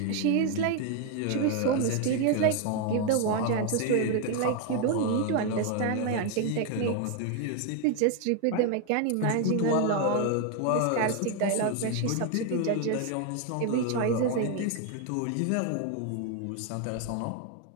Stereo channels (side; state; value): both; different; correlation 0.01